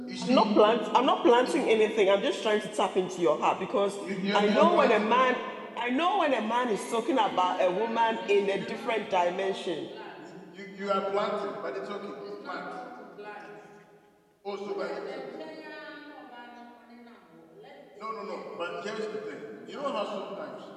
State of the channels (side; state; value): both; identical; correlation 1.00